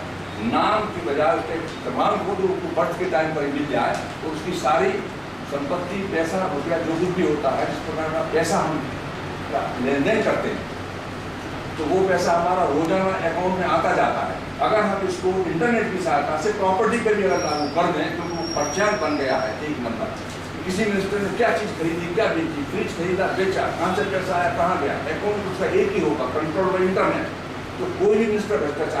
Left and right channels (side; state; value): both; identical; correlation 1.00